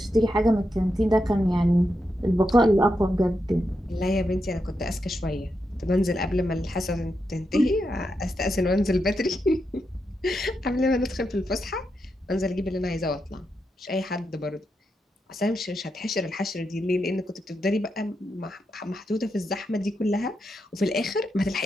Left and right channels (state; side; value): normal; both; correlation 0.85